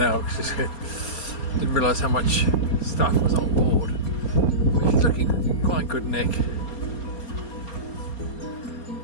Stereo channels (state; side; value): late; right; 4.3 ms